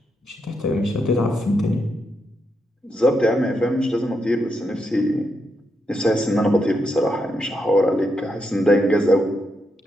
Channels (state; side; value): normal; both; correlation 0.82